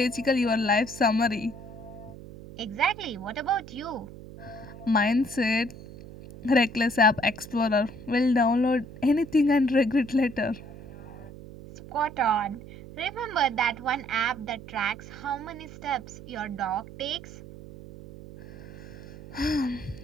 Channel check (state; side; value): noise; right; hum, 15 dB below the sound